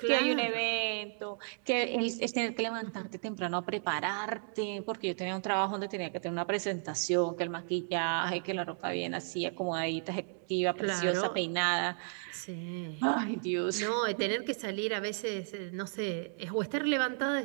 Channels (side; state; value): left; silent; 55 dB below the other